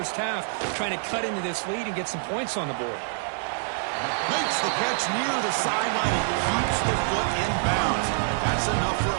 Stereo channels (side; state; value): left; silent; digital silence